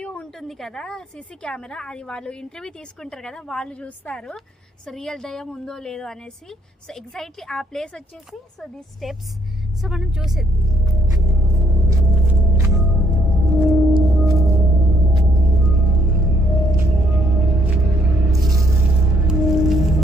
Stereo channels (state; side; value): normal; both; correlation 0.69